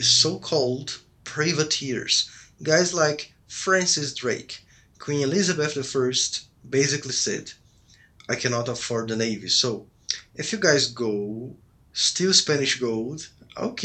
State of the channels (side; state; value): both; identical; correlation 1.00